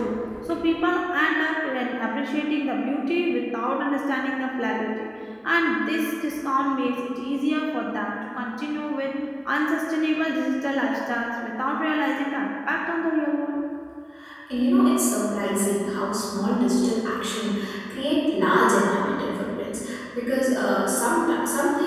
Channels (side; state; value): both; identical; correlation 1.00